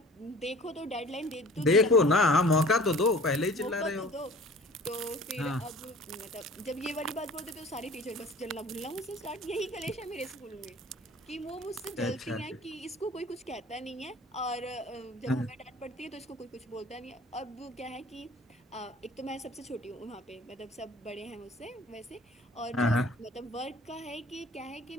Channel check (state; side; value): normal; both; correlation 0.47